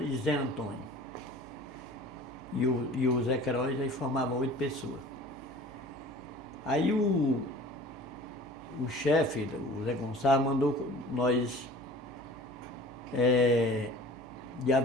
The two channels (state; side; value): noise; right; hum, 22 dB below the sound